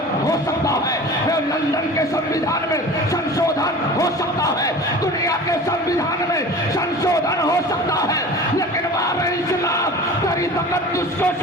हो सकता है, लंदन के संविधान में संशोधन हो सकता है, दुनिया के संविधान में संशोधन हो सकता है। लेकिन बाबे इस्लाम, तेरी तकद्दुस को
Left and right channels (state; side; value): normal; both; correlation 0.38